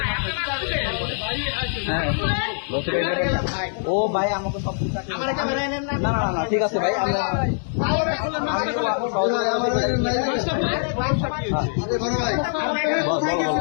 ও ভাই আমাকে সব না না না ঠিক আছে ভাই,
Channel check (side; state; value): right; silent; digital silence